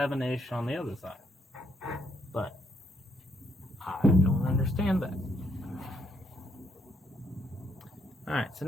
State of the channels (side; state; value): both; normal; correlation 0.72